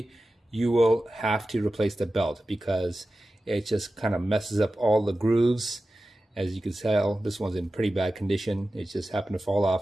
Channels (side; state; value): both; normal; correlation 0.94